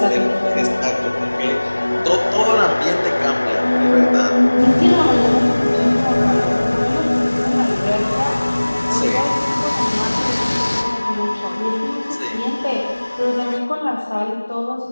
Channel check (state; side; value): inverted; both; correlation -1.00